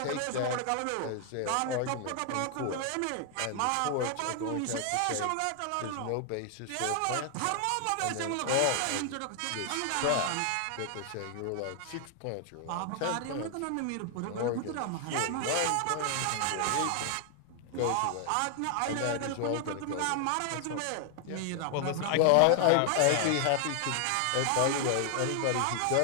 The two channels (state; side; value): different; both; correlation 0.00